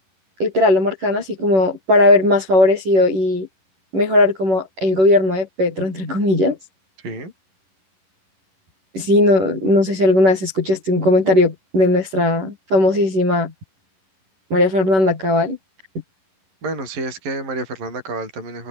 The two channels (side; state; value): left; late; 11 ms